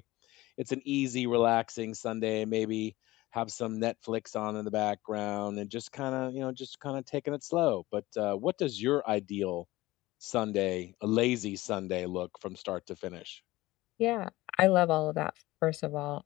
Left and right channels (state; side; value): quieter; right; 18.6 dB